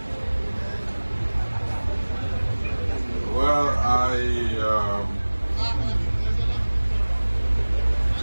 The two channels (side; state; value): both; inverted; correlation -1.00